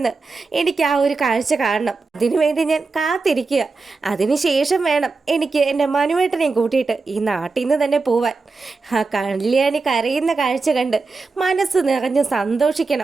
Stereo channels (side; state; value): left; quieter; 4.1 dB